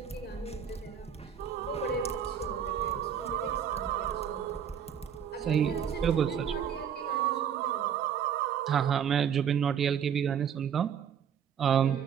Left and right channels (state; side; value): quieter; left; 8.2 dB